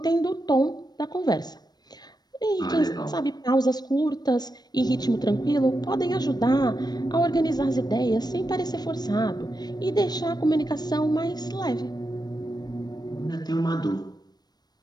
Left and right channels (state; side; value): late; right; 0.19 ms